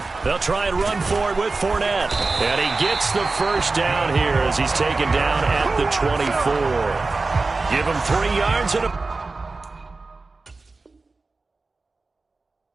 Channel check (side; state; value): left; quieter; 3.7 dB